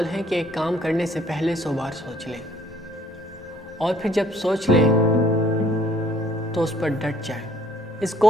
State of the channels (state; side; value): normal; both; correlation 0.62